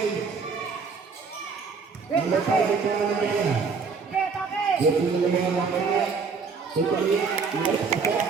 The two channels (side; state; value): left; quieter; 5.1 dB